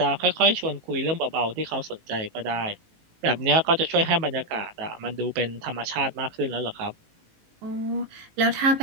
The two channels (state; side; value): late; left; 18 ms